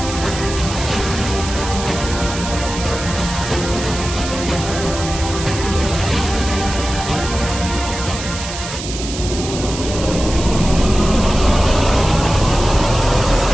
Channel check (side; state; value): right; noise; hiss, 9 dB below the sound